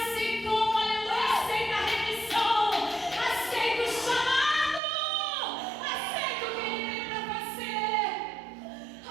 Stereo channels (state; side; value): drops out; left; at 4.8 s